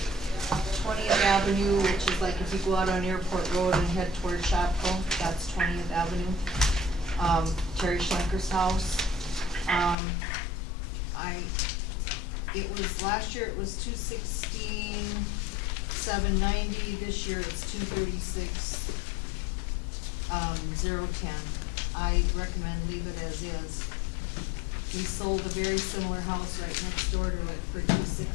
20th Avenue, which is like if you go out on Airport Road and head toward Shopko, that's 20th Avenue. Terry Schlenker's house. Last year it was 216, 790, this year it's 236, 010. I recommend leave it as is. We sold a very similar house right next door to it for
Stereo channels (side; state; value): right; drops out; at 10.0 s